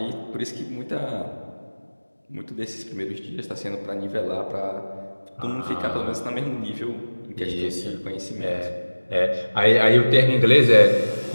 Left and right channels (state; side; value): inverted; both; correlation -1.00